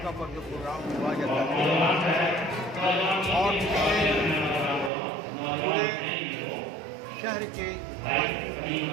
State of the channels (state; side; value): drops out; left; at 4.9 s